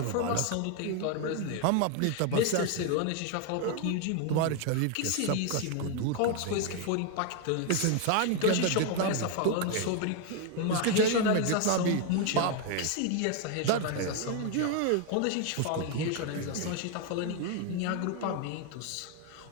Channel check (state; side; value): different; both; correlation 0.01